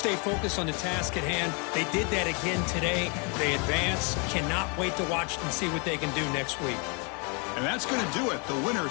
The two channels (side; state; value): right; quieter; 34.4 dB